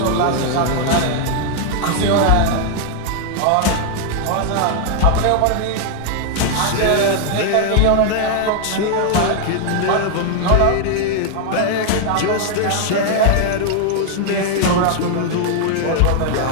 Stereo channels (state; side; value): different; both; correlation 0.00